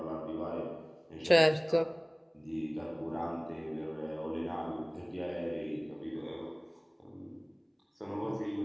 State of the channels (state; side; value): identical; both; correlation 1.00